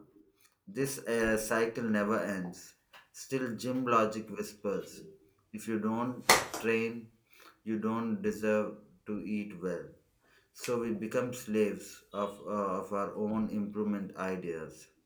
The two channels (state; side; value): identical; both; correlation 1.00